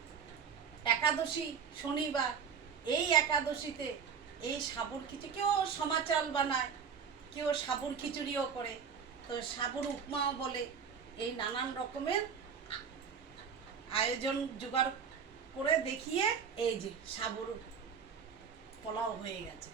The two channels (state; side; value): quieter; left; 6.7 dB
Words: একাদশী শনিবার, এই একাদশীতে এই সাবুর খিচুড়ি, কেউ সমা চাল বানায়, কেউ সাবুর খিচুড়িও করে, তো সাবুর উপমাও বলে। এই নানান রকমের আয়োজন জোগাড় করে দেখিয়ে এই যে সাবুর পোলাও হয়ে গেছে।